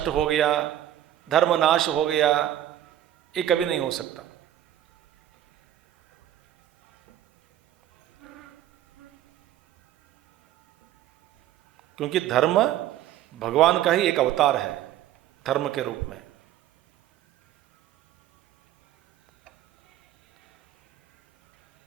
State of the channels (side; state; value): left; quieter; 12.3 dB